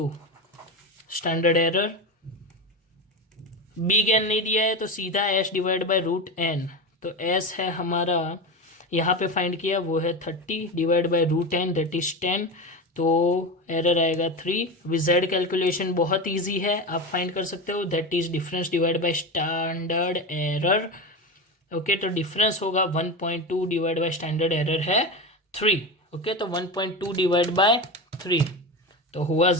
स्टैंडर्ड एरर। बिग एन नहीं दिया है तो सीधा S divide by root n, तो एस है हमारा यहाँ पे फाइंड किया, वो है 30 divide by root n that is 10, तो एरर आएगा 3। विजेड कैलकुलेशन बहुत इजी है, आप फाइंड कर सकते हो, that is difference divide by standard error, okay. तो डिफरेंस होगा 1.2 डिवाइड बाय स्टैंडर्ड एरर है 3, ओके। तो 1.2 डिवाइड बाय 3 तो हुआ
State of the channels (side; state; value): both; normal; correlation 0.21